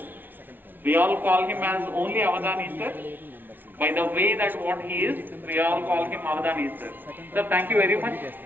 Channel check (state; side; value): late; left; 0.092 ms